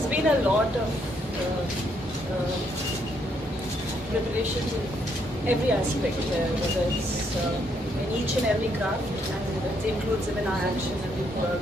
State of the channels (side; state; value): both; normal; correlation 0.73